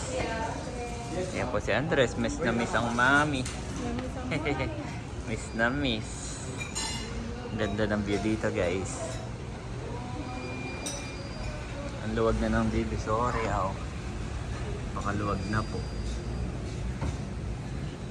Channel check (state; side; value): identical; both; correlation 1.00